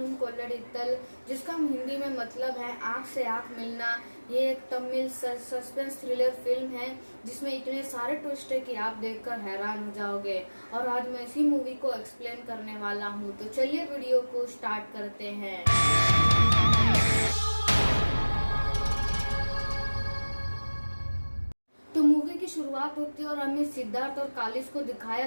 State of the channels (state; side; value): inverted; both; correlation -1.00